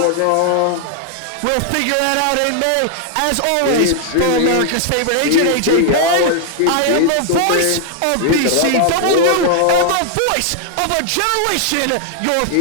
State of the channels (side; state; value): both; different; correlation 0.00